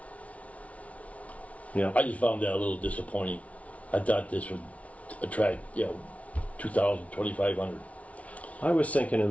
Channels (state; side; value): late; right; 0.066 ms